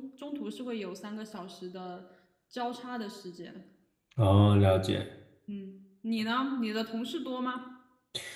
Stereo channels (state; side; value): identical; both; correlation 1.00